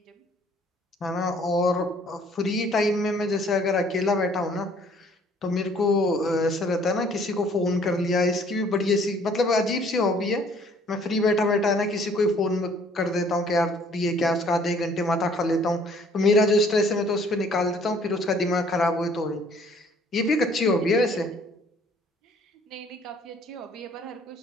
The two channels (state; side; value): normal; both; correlation 0.59